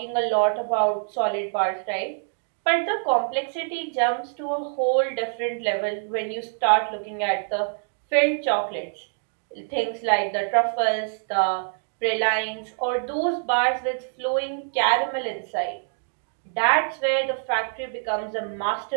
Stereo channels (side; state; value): left; silent; digital silence